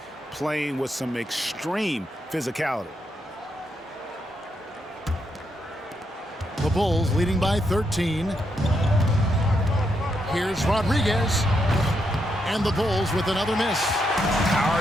playing with some extreme physicality. The Bulls leading by 13. Here's Rodriguez. And the Bulls with another miss.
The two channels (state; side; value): normal; both; correlation 0.80